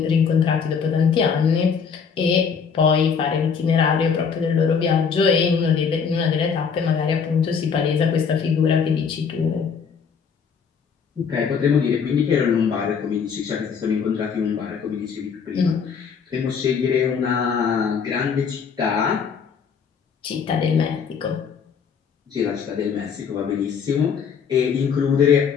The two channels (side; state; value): right; quieter; 6.4 dB